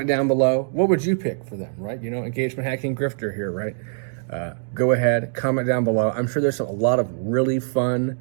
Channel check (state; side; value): silent; left; digital silence